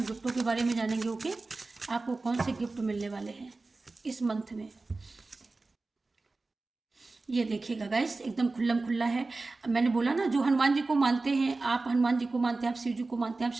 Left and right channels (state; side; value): quieter; left; 3.5 dB